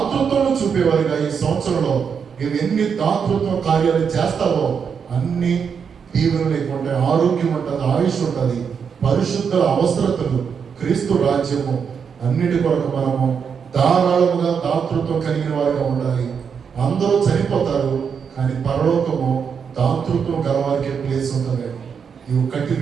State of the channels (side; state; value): left; quieter; 6.6 dB